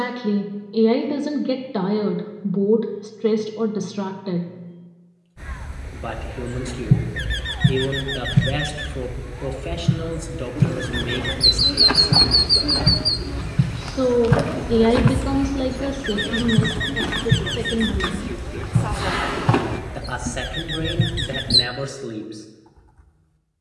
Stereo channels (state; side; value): identical; both; correlation 1.00